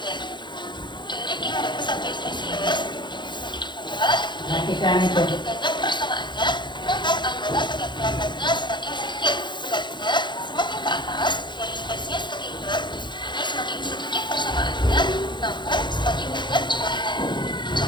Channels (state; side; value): late; right; 0.22 ms